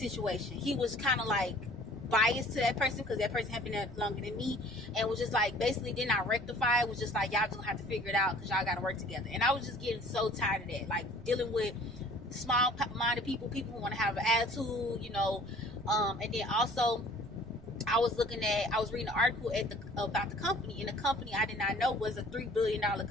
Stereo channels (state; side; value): noise; right; rumble, 19 dB below the sound